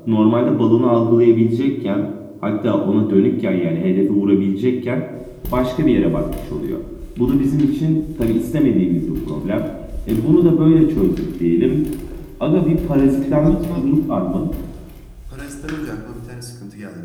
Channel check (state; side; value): identical; both; correlation 1.00